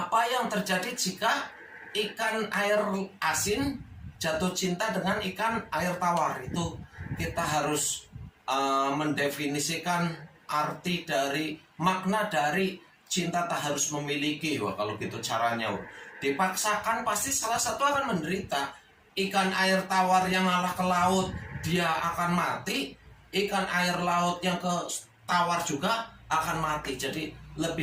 yang terjadi jika ikan air asin jatuh cinta dengan ikan air tawar? Itu kita harus mendefinisikan arti dari makna dari cinta tak harus memiliki. Wah, kalau gitu caranya dipaksakan pasti salah satu akan menderita. Ikan air tawar yang ngalah ke laut dia akan mati, ikan air laut yang ke tawar juga akan mati. Jadi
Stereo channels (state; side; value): identical; both; correlation 1.00